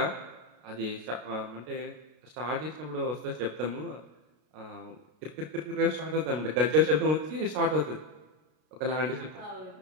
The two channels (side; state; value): left; late; 33 ms